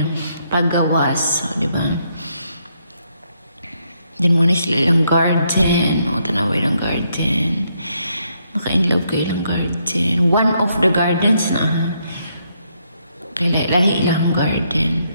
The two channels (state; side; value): inverted; both; correlation -0.75